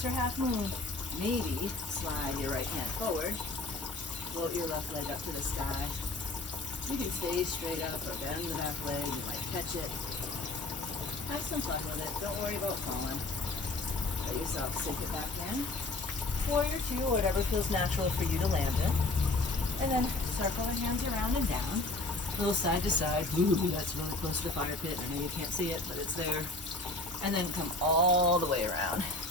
her half moon, maybe slide your right hand forward, float your left leg up to the sky. You can stay straight up or bend the back leg. You might catch it. Have some fun with it. Don't worry about falling. Let yourself sink it back in. Warrior Two, whatever feels natural for you to land in. And then circle the hands around and down. A little side to side. Ooh, that's really close to the fire pit. I know you can't see it, but it's there. And then come all the way around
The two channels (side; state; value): right; quieter; 3.0 dB